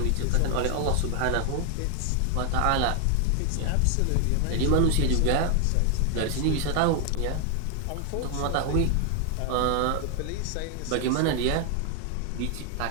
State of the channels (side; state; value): both; different; correlation 0.00